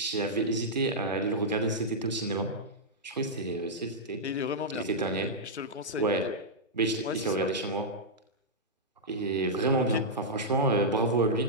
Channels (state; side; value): normal; both; correlation -0.09